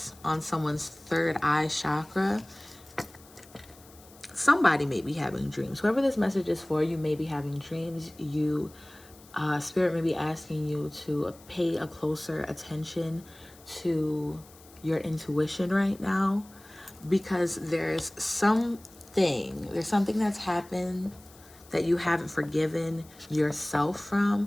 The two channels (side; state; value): left; noise; hiss, 24 dB below the sound